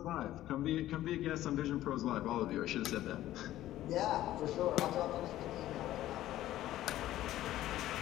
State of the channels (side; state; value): right; quieter; 14.1 dB